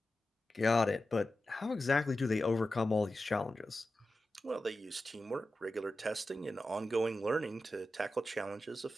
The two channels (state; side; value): normal; both; correlation 0.93